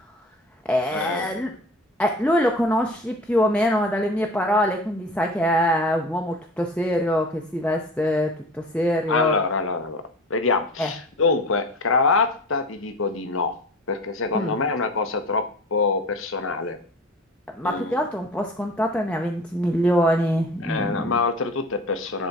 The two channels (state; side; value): normal; both; correlation 0.38